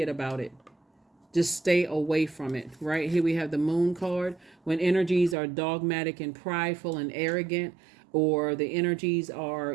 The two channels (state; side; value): drops out; left; at 5.4 s